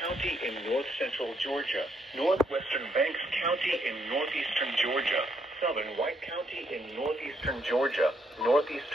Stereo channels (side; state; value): both; normal; correlation 0.74